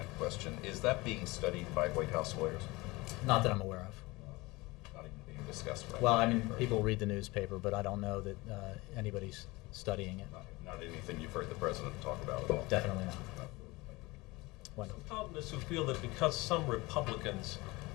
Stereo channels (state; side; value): quieter; right; 22.5 dB